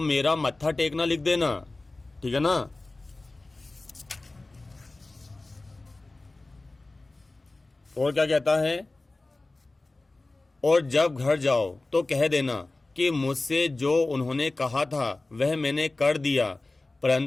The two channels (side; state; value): right; quieter; 3.1 dB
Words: मेरा मत्था टेकना लिख देना, ठीक है ना। और क्या कहता है, और जब घर जाओ तो कह देना कि मुझसे जो उन्होंने कहा था वह मैंने कर दिया,